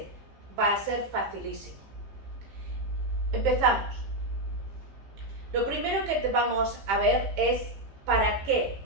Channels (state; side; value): late; left; 15 ms